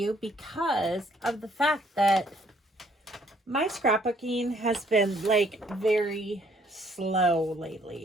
because of the fact that my scrapbooking has been like very slow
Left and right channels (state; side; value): normal; both; correlation 0.65